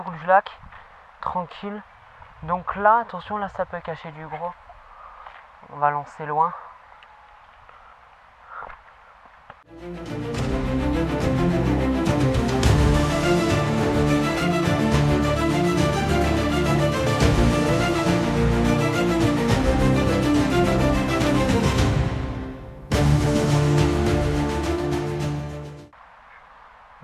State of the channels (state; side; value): identical; both; correlation 1.00